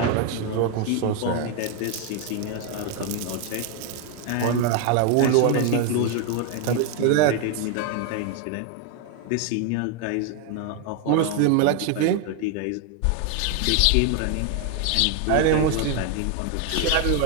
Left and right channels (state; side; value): different; both; correlation 0.01